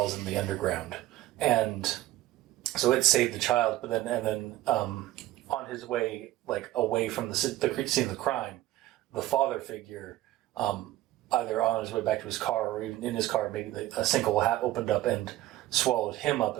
in the underground, and so it saved the child. But then on his way, like away from the scene of the crime, the father figure, either on his way back to his car or even in his car, maybe a sinkhole opened up and swallowed him up,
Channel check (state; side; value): quieter; left; 15.4 dB